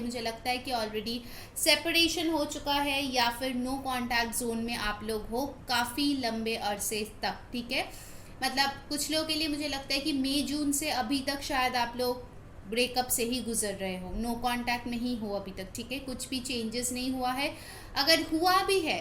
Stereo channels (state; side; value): identical; both; correlation 1.00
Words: मुझे लगता है कि ऑलरेडी सेपरेशन हो चुका है या फिर नो कॉन्टैक्ट जोन में आप लोग हो काफ़ी लंबे अरसे तक, ठीक है। मतलब कुछ लोगों के लिए मुझे लगता है कि मई जून से अभी तक शायद आप लोग ब्रेकअप से ही गुजर रहे हो, नो कांटेक्ट में ही हो अभी तक, ठीक है। कुछ भी चेंजेस नहीं हुआ है। अगर हुआ भी है,